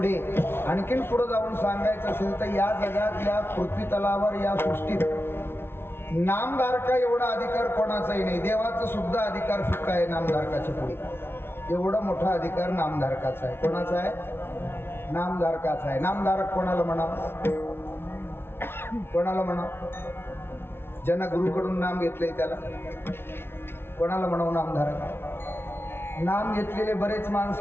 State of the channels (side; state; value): right; late; 0.11 ms